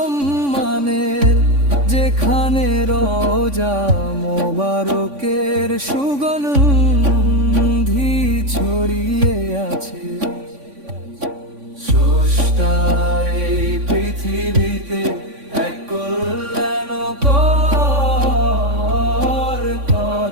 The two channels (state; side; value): late; left; 3.5 ms